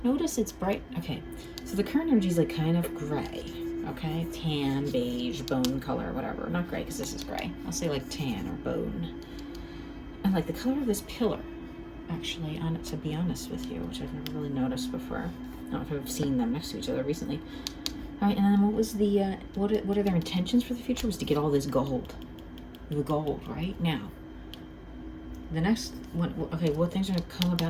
Notice it's bright. Okay, so the current energy is like kind of gray. Okay, tan, beige, bone color, whatever. Not gray, because this is gray. I'll say like tan or bone. And like the color of this pillar, actually, to be honest with you, which I've never really noticed before. I don't know if I've seen them next to each other recently. All right, and then what was the, what are their intentions for the future? Was to get all this gold. The gold, right? Now, the next one, okay, what things are going to come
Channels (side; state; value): both; identical; correlation 1.00